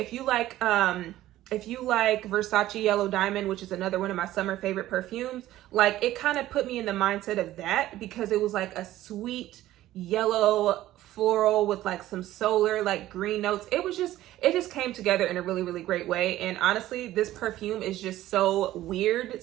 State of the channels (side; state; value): left; quieter; 14.6 dB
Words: you like Versace Yellow Diamond, which is another one of my summer favorite perfumes, like it kind of put me in the mindset of that, because it was like a sweet yellow floral with like some solar like green notes. It just came together in a really, really great way. And honestly, this perfume is just so weird